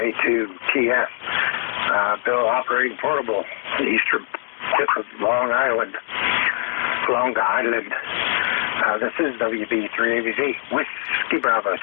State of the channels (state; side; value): silent; right; digital silence